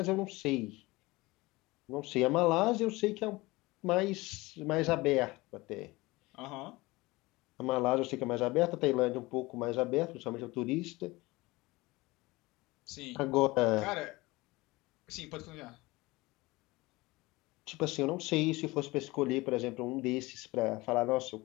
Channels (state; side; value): quieter; right; 21.5 dB